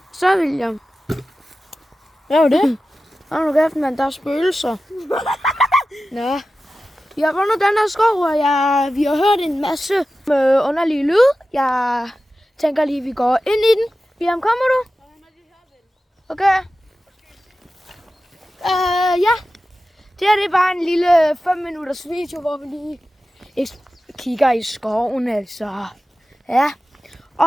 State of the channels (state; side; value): normal; both; correlation 0.94